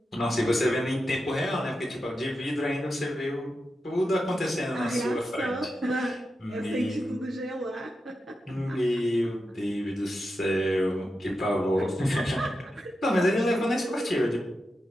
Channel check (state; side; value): normal; both; correlation 0.89